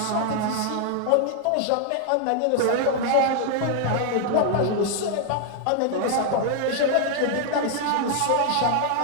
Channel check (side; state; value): both; different; correlation 0.00